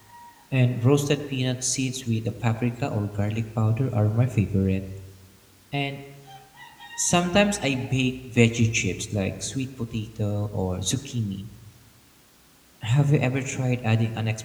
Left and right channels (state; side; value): identical; both; correlation 1.00